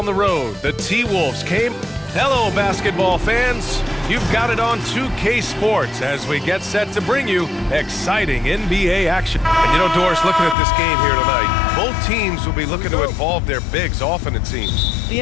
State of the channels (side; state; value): right; drops out; at 10.6 s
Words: the road, the T-Wolves came. Hello, basketball fans. You've got it on 2K Sports as we get set to bring you exciting NBA action. And you know, Doris, looking at this game here tonight, both teams will be looking to involve their bigs often, it seems.